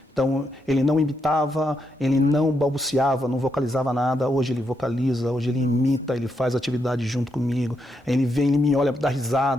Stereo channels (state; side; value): normal; both; correlation 0.80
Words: Então ele não imitava, ele não balbuciava, não vocalizava nada, hoje ele vocaliza, hoje ele imita, ele faz atividade junto comigo, ele vem, ele me olha, dá